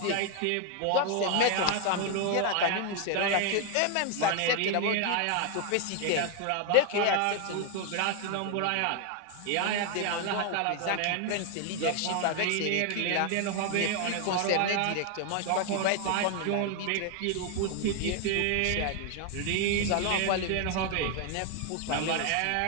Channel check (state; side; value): different; both; correlation 0.00